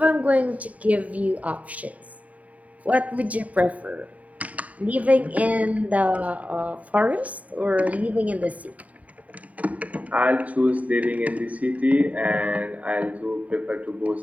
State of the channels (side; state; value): left; late; 0.070 ms